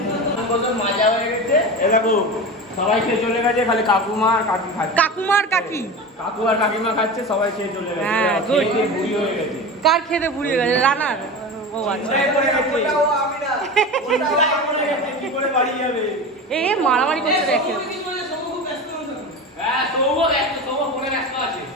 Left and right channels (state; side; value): normal; both; correlation 0.27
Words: সবাই খেয়ে চলে গেছে, খালি কাকুমা আর কাকি খাচ্ছে। কাকুমা আর কাকি, কাকু আর কাকিমা খাচ্ছে, সবাই খেয়ে চলে গেছে। হ্যাঁ গুড। বুড়ি হয়ে গেছে। কার খেতে বুড়ি হয়ে গেছে? রানার। ও আচ্ছা এ মারামারি করতে দেখে।